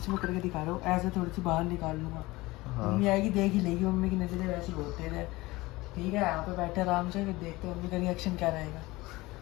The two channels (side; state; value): right; quieter; 20.6 dB